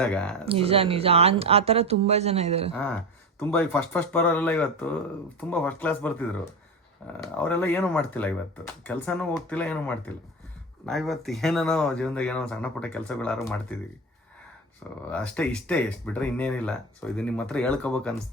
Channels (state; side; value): normal; both; correlation 0.23